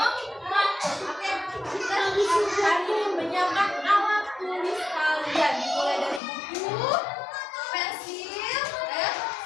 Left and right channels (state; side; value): drops out; right; at 6.2 s